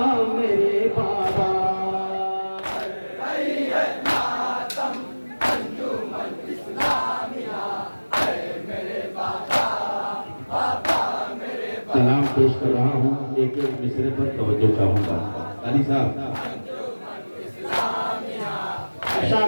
मेरे बाबा सलाम पेश कर रहा हूँ एक एक मिसरे पर तवज्जो चाहूंगा अली साहब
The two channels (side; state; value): both; inverted; correlation -1.00